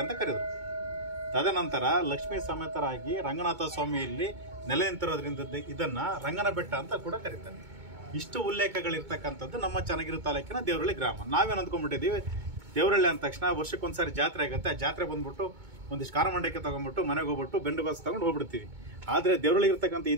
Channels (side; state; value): left; late; 2.2 ms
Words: ಅಂತ ಕರೆದರು. ತದನಂತರ ಲಕ್ಷ್ಮೀ ಸಮೇತರಾಗಿ ರಂಗನಾಥ ಸ್ವಾಮಿಯಲ್ಲಿ ನೆಲೆ ನಿಂತಿರೋದ್ರಿಂದ ಇದನ್ನ ರಂಗನ ಬೆಟ್ಟ ಅಂತ ಕೂಡ ಕರೀತಾರೆ. ಇಷ್ಟು ಉಲ್ಲೇಖಗಳಿರ್ತಕ್ಕಂಥದ್ದು ನಮ್ಮ ಚನ್ನಗಿರಿ ತಾಲೂಕಿನ ದೇವರಹಳ್ಳಿ ಗ್ರಾಮ. ನಾವೇನು ಅಂದ್ಕೊಂಡ್ಬಿಟ್ಟಿದ್ದೀವಿ, ದೇವರಹಳ್ಳಿ ಅಂದ ತಕ್ಷಣ ವರ್ಷಕ್ಕೊಂದ್ಸಾರಿ ಜಾತ್ರೆ ಆಗುತ್ತೆ. ಆ ಜಾತ್ರೆ ಬಂದ್ಬಿಟ್ಟು ಒಂದಿಷ್ಟು ಖಾರಮಂಡಕ್ಕೆ ತಗೊಂಡ್ಬಿಟ್ಟು ಮನೆಗೆ ಹೋಗ್ಬಿಟ್ಟು ಬೆಂಡು ಬಸ್ ತಗೊಂಡು ಹೋಗ್ಬಿಡ್ತೀವಿ. ಆದ್ರೆ ದೇವರಹಳ್ಳಿ ಇರ್ತಕ್ಕಂಥ